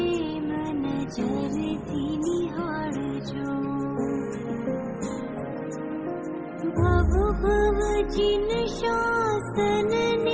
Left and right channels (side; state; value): both; identical; correlation 1.00